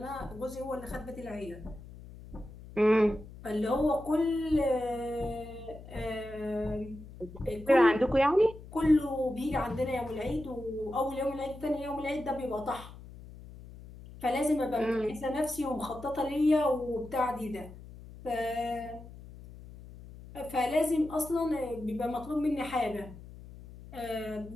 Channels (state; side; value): noise; left; hum, 16 dB below the sound